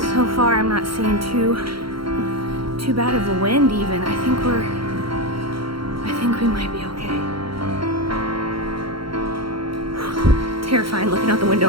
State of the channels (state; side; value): late; left; 0.74 ms